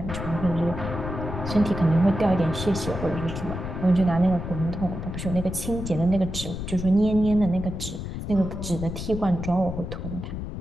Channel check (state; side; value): noise; left; rumble, 6 dB below the sound